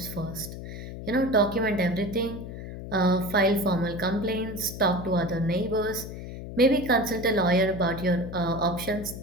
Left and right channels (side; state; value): left; noise; hum, 10 dB below the sound